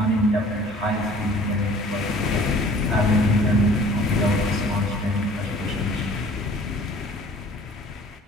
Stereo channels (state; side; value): normal; both; correlation 0.50